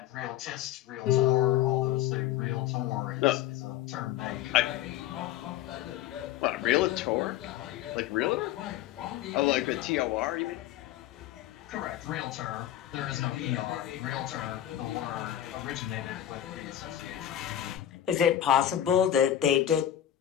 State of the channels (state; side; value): quieter; right; 11.7 dB